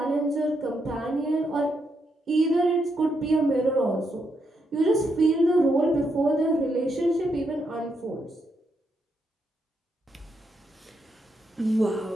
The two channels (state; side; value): normal; both; correlation 0.80